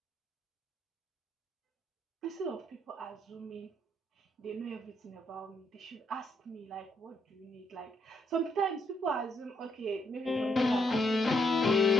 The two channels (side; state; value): both; normal; correlation 0.74